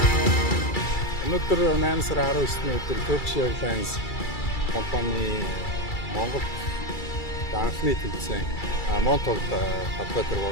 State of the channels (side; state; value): right; late; 2.3 ms